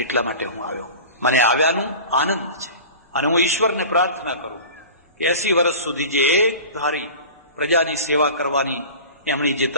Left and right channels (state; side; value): inverted; both; correlation -0.37